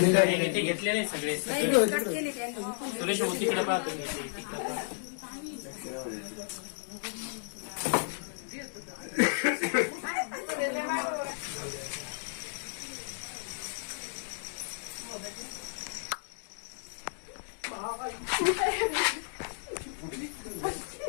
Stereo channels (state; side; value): silent; right; digital silence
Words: घेतलेले सगळे सुरेश तिकडे पाहतो